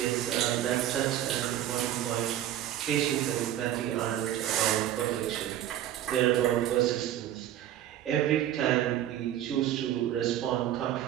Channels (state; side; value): quieter; left; 12.0 dB